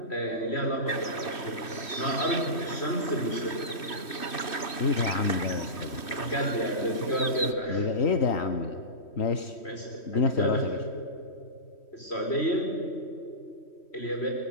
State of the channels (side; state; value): right; late; 3.1 ms